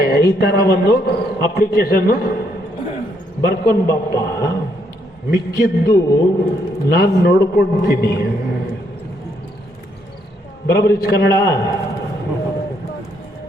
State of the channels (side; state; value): both; normal; correlation 0.73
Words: ಈ ತರ ಒಂದು ಅಪ್ಲಿಕೇಶನ್ ಬರ್ಕೊಂಬಾಪ, ಮಿಕ್ಕಿದ್ದು ನಾನು ನೋಡ್ಕೊಳ್ತೀನಿ, ಬರಬರಿ ಕನ್ನಡ,